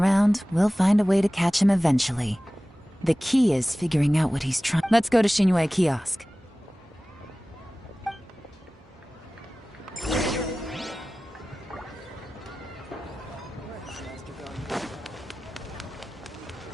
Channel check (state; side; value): normal; both; correlation 0.97